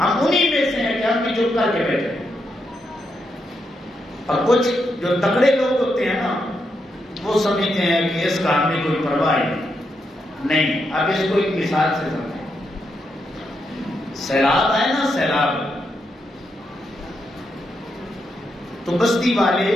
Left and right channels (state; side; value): normal; both; correlation 0.82